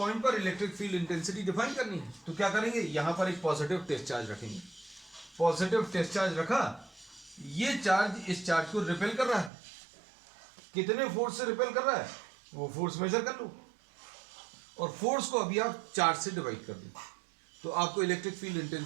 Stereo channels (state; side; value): drops out; left; at 9.5 s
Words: पर इलेक्ट्रिक फील्ड इंटेंसिटी डिफाइन करनी है तो क्या करेंगे? यहां पर एक पॉजिटिव टेस्ट चार्ज रखेंगे. पॉजिटिव टेस्ट चार्ज रखा, ये चार्ज इस चार्ज को रिपेल कर रहा है. कितने फोर्स से रिपेल कर रहा है वो फोर्स मेजर कर लो और फोर्स को अभी आप चार्ज से डिवाइड कर दो तो आपको electric field